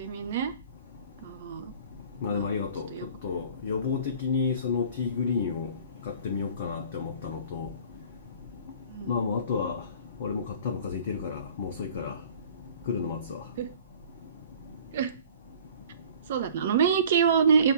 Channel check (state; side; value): inverted; both; correlation -0.49